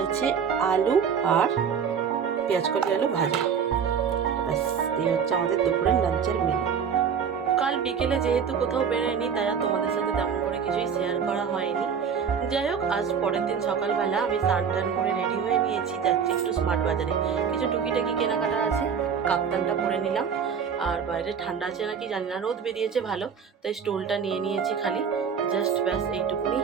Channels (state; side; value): quieter; left; 6.9 dB